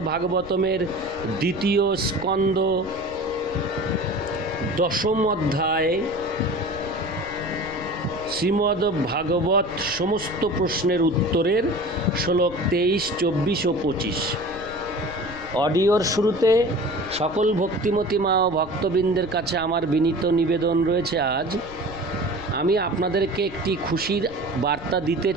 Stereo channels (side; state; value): left; noise; rumble, 16 dB below the sound